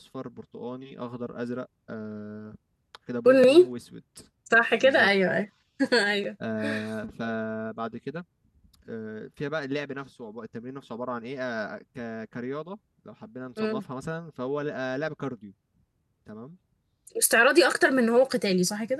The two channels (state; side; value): identical; both; correlation 1.00